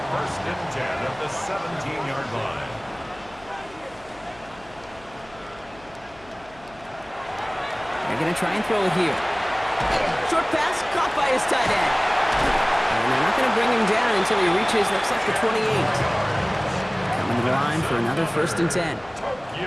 and 10 at the 17-yard line. They're going to try and throw it here. Short pass caught by his tight end. And they're not going to bring him down until he reaches, looks like the 28. Coming to the line for another 1st and 10.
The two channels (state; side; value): noise; left; hum, 24 dB below the sound